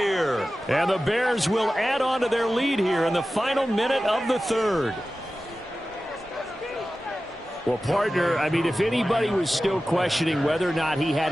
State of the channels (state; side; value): normal; both; correlation 0.95